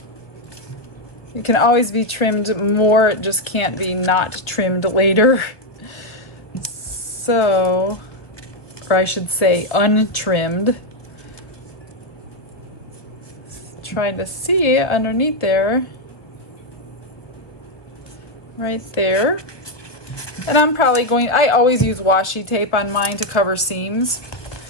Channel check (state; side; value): late; right; 1.3 ms